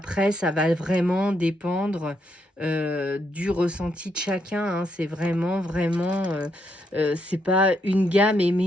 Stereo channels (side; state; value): both; normal; correlation 0.77